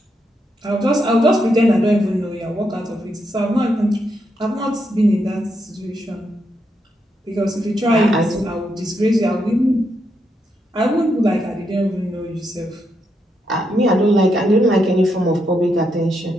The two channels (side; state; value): both; normal; correlation 0.81